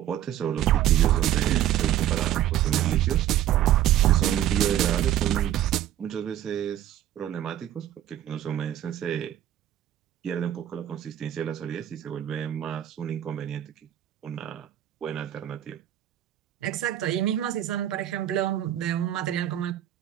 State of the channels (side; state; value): left; quieter; 12.0 dB